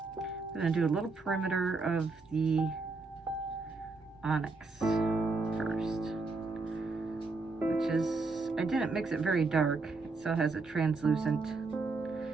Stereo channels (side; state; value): left; quieter; 3.8 dB